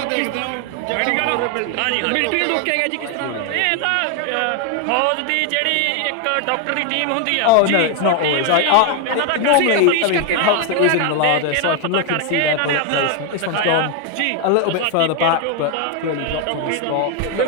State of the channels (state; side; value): different; both; correlation 0.01